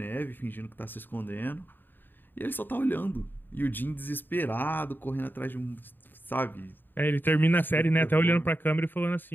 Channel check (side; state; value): right; late; 0.093 ms